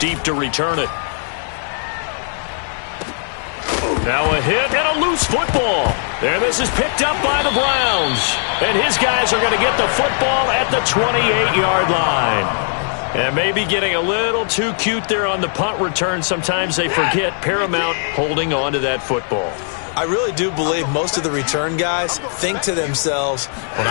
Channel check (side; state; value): right; silent; digital silence